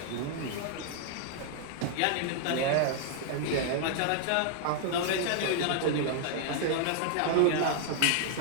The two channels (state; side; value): different; both; correlation -0.01